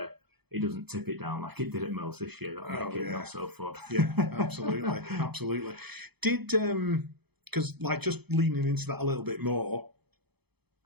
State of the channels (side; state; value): left; late; 0.98 ms